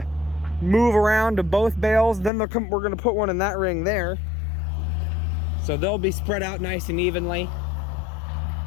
move around to both bales. Then we're going to put one in that ring there. So they'll be spread out nice and evenly.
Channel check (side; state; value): right; drops out; at 2.3 s